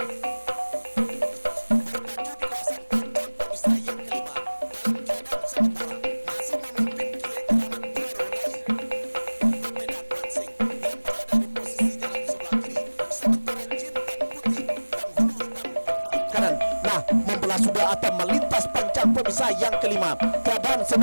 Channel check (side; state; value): both; inverted; correlation -1.00